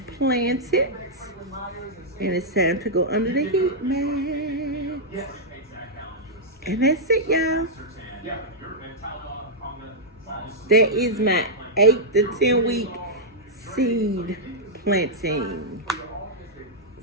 planted, and it's time to go under the heat, man. And that's it, y'all. That is my 8 to 10 week seed planting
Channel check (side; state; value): both; normal; correlation -0.07